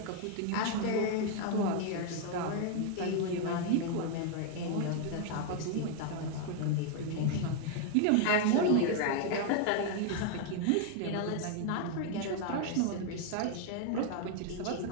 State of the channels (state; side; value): different; both; correlation 0.00